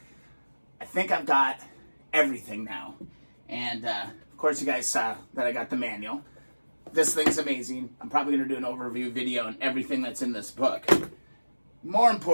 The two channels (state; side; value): inverted; both; correlation -1.00